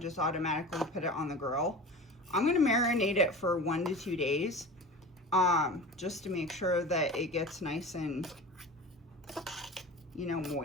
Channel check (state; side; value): normal; both; correlation 0.34